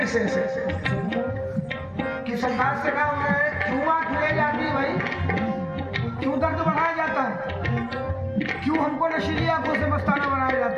से कि सरकार से कहा उन्होंने, क्यों आँख मिलाई जाती है भाई, क्यों दर्द बढ़ाया जाता है, क्यों हमको नशीली आंखों से मस्ताना बनाया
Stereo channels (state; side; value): identical; both; correlation 1.00